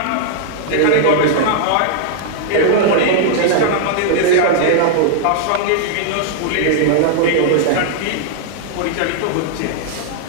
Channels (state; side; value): different; both; correlation -0.01